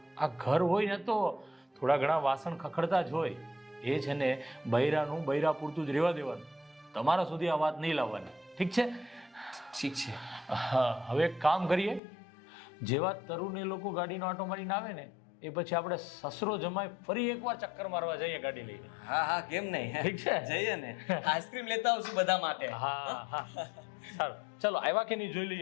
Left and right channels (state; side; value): drops out; right; at 12.0 s